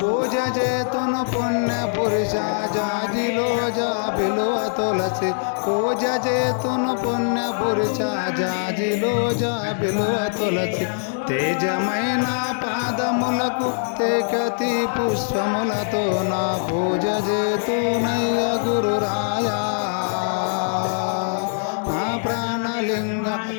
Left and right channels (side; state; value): right; silent; 64 dB below the other